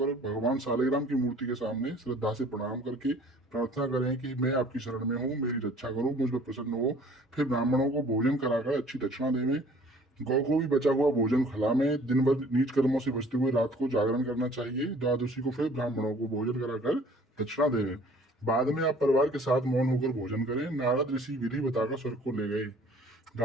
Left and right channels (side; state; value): both; normal; correlation 0.53